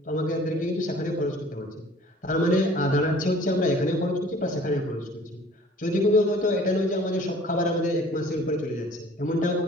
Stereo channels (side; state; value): both; normal; correlation 0.50